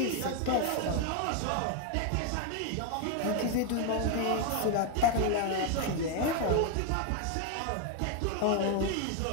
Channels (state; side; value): different; both; correlation 0.01